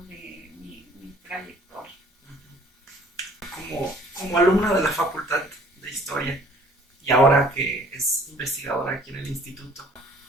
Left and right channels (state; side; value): normal; both; correlation 0.55